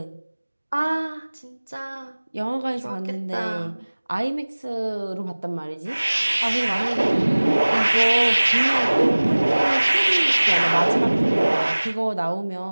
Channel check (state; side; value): inverted; both; correlation -1.00